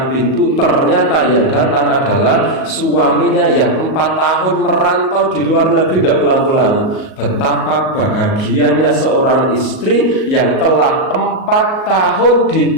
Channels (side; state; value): right; late; 38 ms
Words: pintu, ternyata yang datang adalah suaminya yang 4 tahun merantau di luar negeri tidak pulang-pulang. Betapa bahagianya seorang istri yang telah 4 tahun